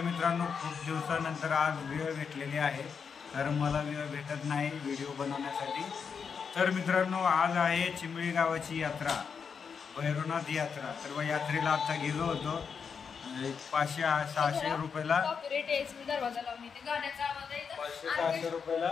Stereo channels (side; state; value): right; quieter; 6.2 dB